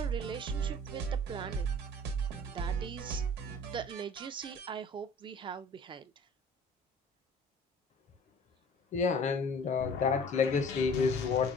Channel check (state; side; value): normal; both; correlation 0.47